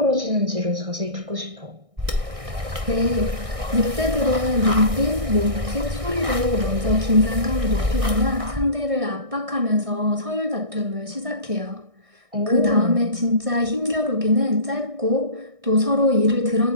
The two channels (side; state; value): left; late; 1.6 ms